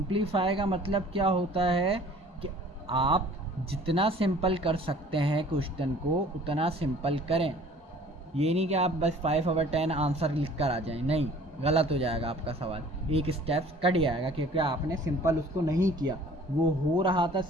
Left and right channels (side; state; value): both; normal; correlation 0.50